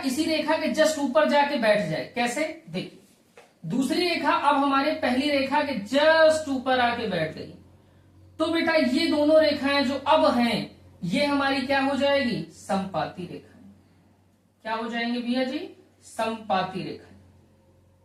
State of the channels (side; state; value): both; identical; correlation 1.00